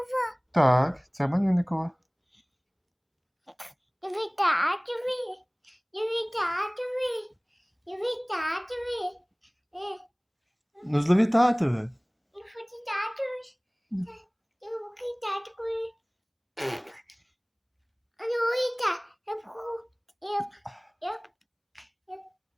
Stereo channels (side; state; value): both; identical; correlation 1.00